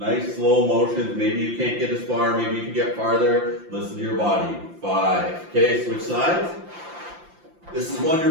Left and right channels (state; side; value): late; left; 5.8 ms